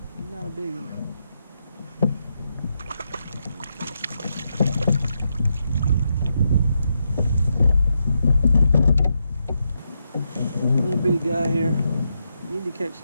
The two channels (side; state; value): both; inverted; correlation -0.83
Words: Not a big one. Little bitty guy here. Need to catch